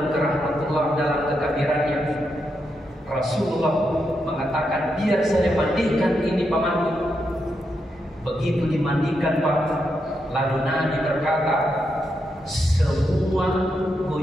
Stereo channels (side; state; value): both; normal; correlation 0.83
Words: ke rahmatullah dalam kekafirannya, Rasulullah mengatakan, biar saya mandikan ini pamanku. Begitu dimandikan Pak, lalu Nabi berkata, semua